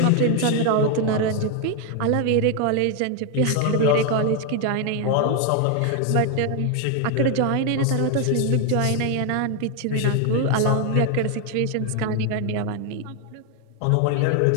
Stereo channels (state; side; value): different; both; correlation 0.01